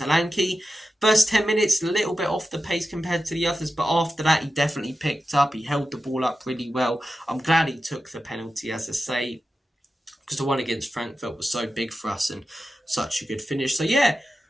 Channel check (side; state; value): both; normal; correlation 0.92